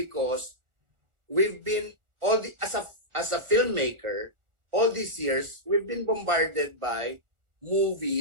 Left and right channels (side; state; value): left; late; 1.4 ms